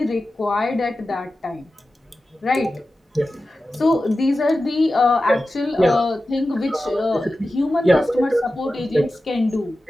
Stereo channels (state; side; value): normal; both; correlation 0.94